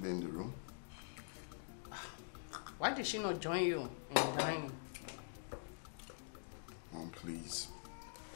be in the room. Why did she not join you in the dining? Mom, please.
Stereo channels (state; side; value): silent; right; digital silence